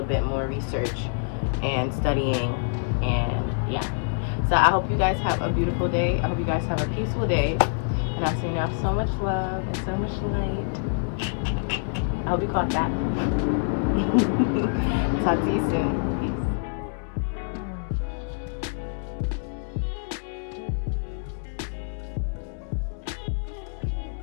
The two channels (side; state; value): right; silent; digital silence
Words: bit more research and studying, and yeah. So I hope you guys have a beautiful day. I hope you guys have a peaceful day, and I send y'all so much love and so much light. I hope you caught that. Talk to you soon.